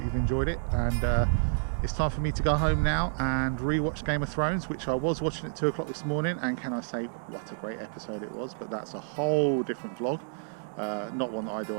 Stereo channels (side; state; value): left; silent; digital silence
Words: you've enjoyed it. And it's time for me to go home now and re-watch Game of Thrones, which I was watching at 2 o'clock this morning. And can I say, what a great episode it was. But that's a whole different vlog. Not one that I do